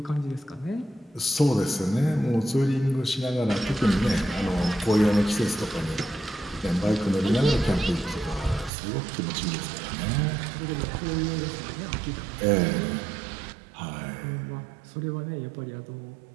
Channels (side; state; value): left; drops out; at 8.7 s